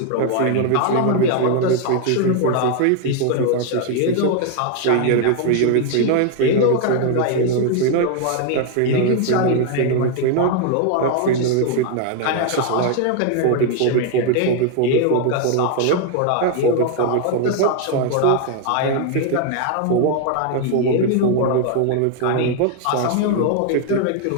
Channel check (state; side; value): different; both; correlation 0.00